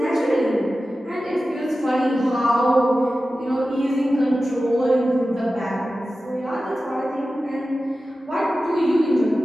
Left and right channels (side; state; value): both; normal; correlation 0.94